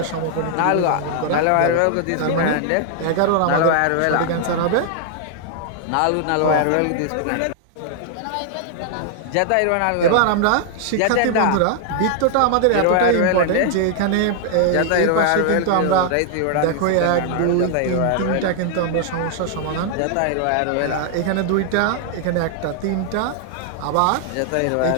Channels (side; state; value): both; different; correlation 0.00